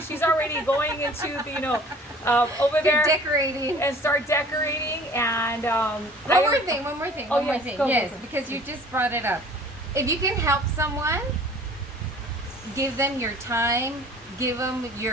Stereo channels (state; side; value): normal; both; correlation 0.49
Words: she's already going into the, over there decorating and start decorating. And one more thing. Go. Because you just brought it up. If you can help someone, give them your time. Give them